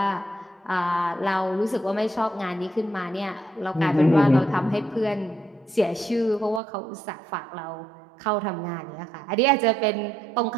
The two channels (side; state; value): left; drops out; at 6.6 s